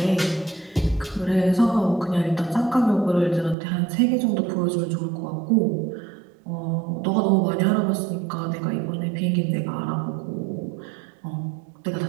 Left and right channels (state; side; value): drops out; left; at 3.6 s